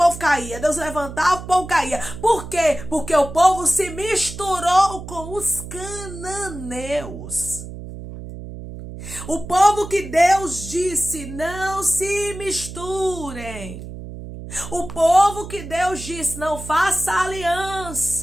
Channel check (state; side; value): noise; right; hum, 11 dB below the sound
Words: caía. Deus levantava, o povo caía. Por quê? Porque o povo se misturou com os cananeus. O povo que Deus disse, não se misturem. O povo que Deus disse, não faça